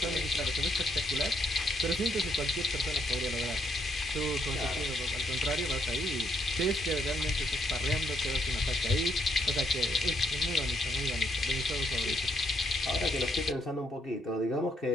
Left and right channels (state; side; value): normal; both; correlation 0.71